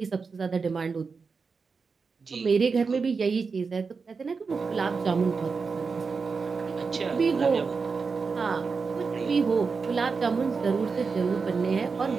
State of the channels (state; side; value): quieter; left; 4.9 dB